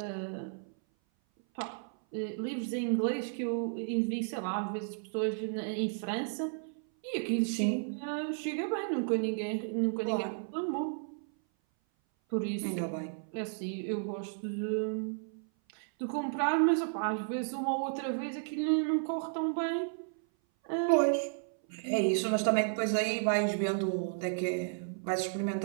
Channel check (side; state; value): left; silent; 56 dB below the other